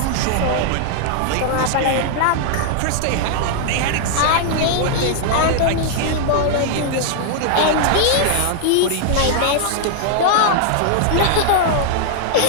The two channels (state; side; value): different; both; correlation -0.01